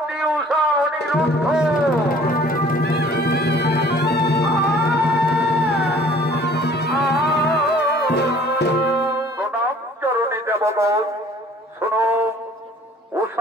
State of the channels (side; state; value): both; normal; correlation 0.53